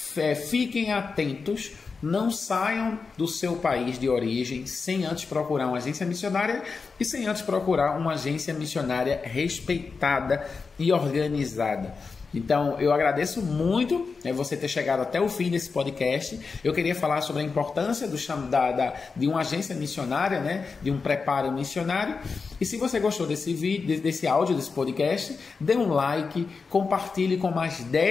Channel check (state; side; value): quieter; right; 4.8 dB